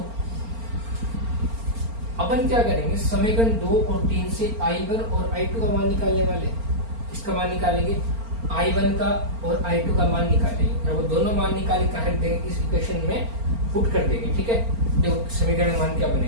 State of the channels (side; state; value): left; late; 4.4 ms